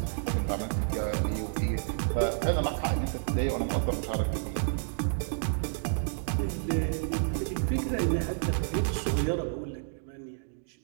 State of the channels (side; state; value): left; silent; digital silence